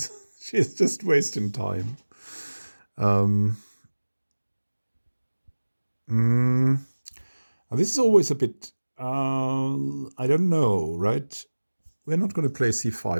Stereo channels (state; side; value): inverted; both; correlation -1.00